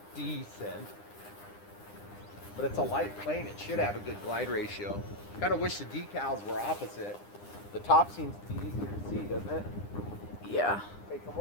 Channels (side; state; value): right; late; 9.9 ms